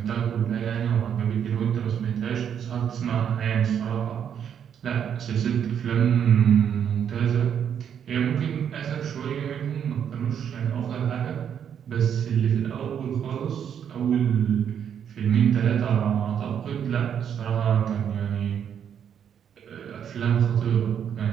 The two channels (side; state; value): left; quieter; 8.5 dB